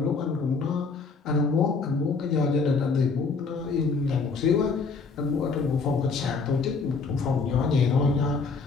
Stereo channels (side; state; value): right; quieter; 4.5 dB